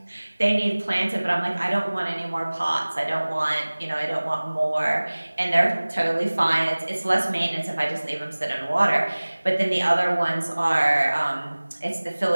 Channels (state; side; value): inverted; both; correlation -1.00